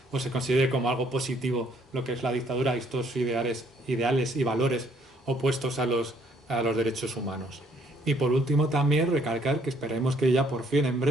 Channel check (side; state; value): both; normal; correlation 0.65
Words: o se considere como algo positivo lo que es la dictadura y estos ideales y valores opuestos a los derechos humanos. Y por último también recalcar que esperemos que ya por fin en